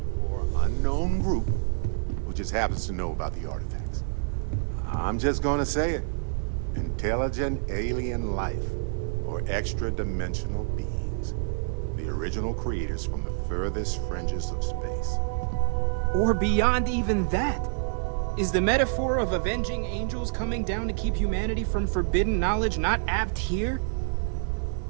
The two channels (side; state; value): left; silent; digital silence